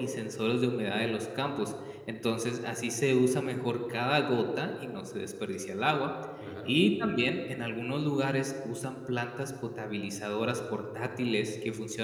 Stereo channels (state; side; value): identical; both; correlation 1.00